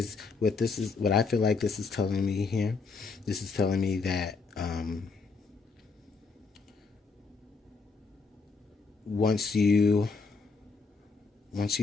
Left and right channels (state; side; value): quieter; right; 4.5 dB